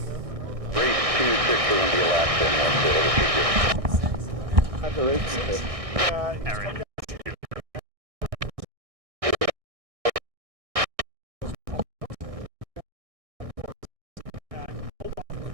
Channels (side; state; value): left; late; 1.6 ms